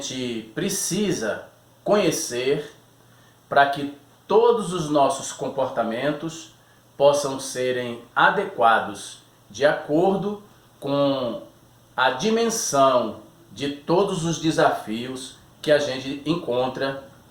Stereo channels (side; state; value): both; identical; correlation 1.00